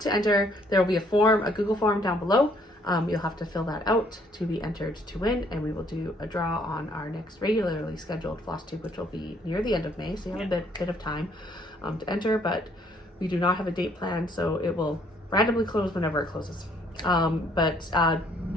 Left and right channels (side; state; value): both; normal; correlation 0.64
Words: to enter, there will be a form, a Google form down below. You'll have to fill that out to be entered to win, and we will do a draw on our next regularly scheduled floss tube, which will be near the end of May, so you have a bit of time to enter, but we do not have a date planned, so it will randomly close whenever it closes.